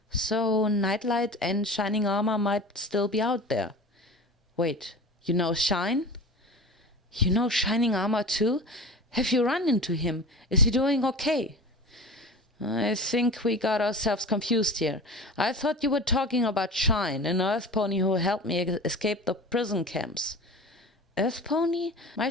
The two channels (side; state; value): both; normal; correlation 0.34